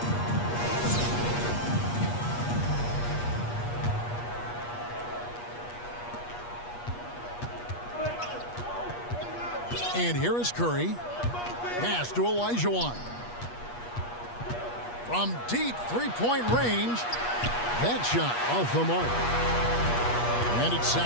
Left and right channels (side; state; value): right; late; 8.4 ms